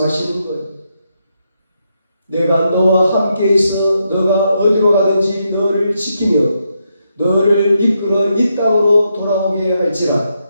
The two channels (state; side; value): inverted; both; correlation -0.81